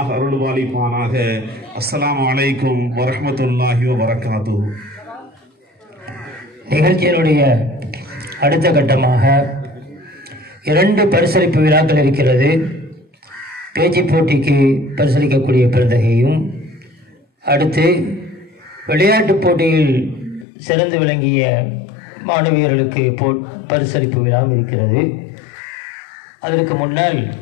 அருள் பாலிப்பானாக. அஸ்ஸலாமு அலைக்கும் வரஹ்மத்துல்லாஹி வபரகாத்துஹு. நிகழ்ச்சியினுடைய அடுத்த கட்டமாக 2 பரிசளிப்பு விழாக்கள் இருக்கிறது. பேச்சு போட்டிக்கு பரிசளிக்கக்கூடிய பெருந்தகையும், அடுத்து விளையாட்டு போட்டியில் சிறந்து விளங்கிய மாணவியர்களுக்கு பரிசளிப்பு விழாவும் இருக்கிறது. அதற்கு முன்னால்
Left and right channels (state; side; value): drops out; right; at 20.5 s